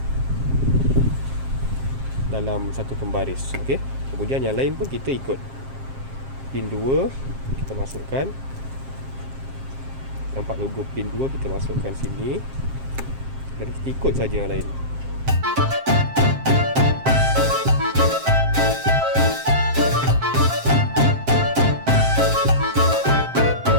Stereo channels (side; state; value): left; late; 7.5 ms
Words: dalam satu pembaris. Okey, kemudian yang lain pun kita ikut. Pin 2 kita masukkan. Nampak logo pin 2, kita masukkan sini. Dan kita ikut saja yang lain.